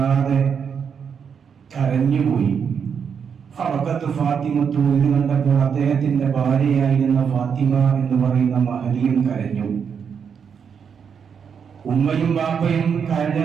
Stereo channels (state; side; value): quieter; left; 6.9 dB